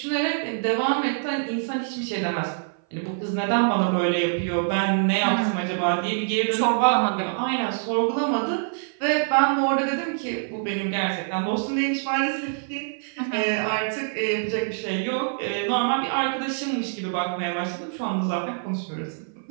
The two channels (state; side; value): silent; left; 56 dB below the other